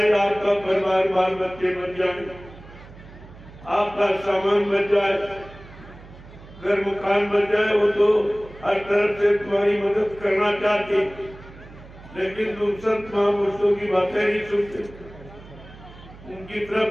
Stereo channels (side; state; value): right; noise; hum, 19 dB below the sound